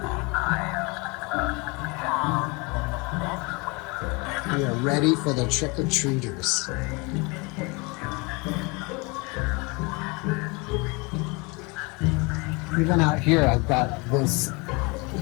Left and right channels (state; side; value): quieter; right; 28.1 dB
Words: We are ready for the trick-or-treaters. Even out here, I've got this